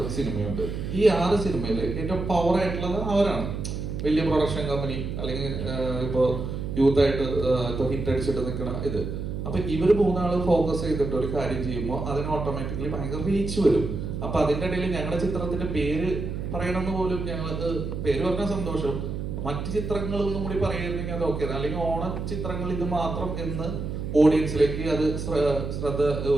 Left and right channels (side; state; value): right; noise; hum, 5 dB below the sound